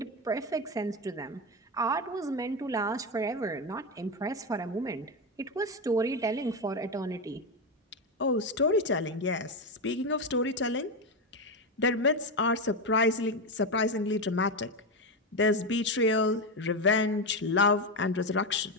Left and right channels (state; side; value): normal; both; correlation 0.12